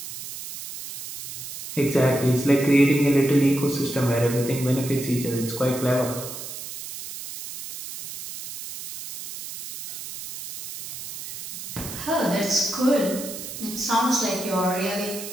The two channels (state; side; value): noise; right; hiss, 10 dB below the sound